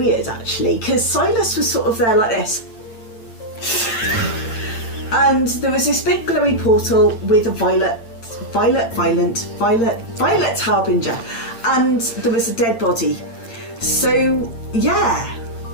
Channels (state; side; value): late; right; 8.8 ms